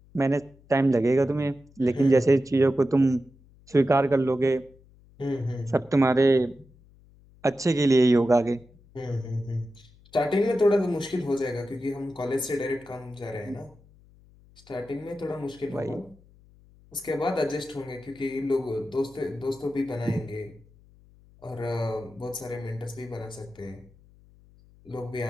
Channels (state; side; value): noise; left; hum, 27 dB below the sound